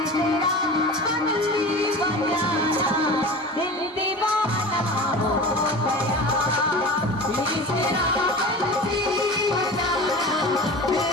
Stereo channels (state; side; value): normal; both; correlation 0.34